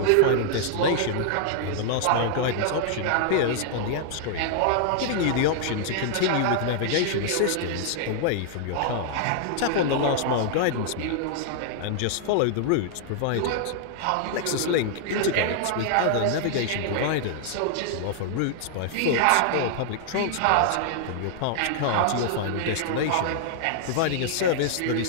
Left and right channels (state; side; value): different; both; correlation -0.01